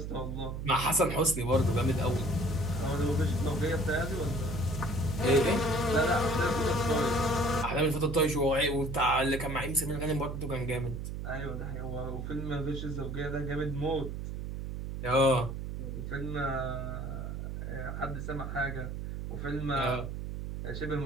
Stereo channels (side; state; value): right; noise; hum, 5 dB below the sound